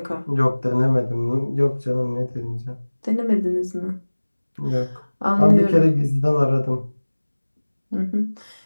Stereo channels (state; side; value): inverted; both; correlation -1.00